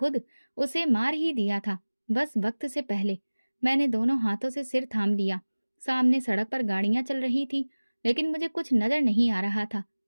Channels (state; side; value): inverted; both; correlation -1.00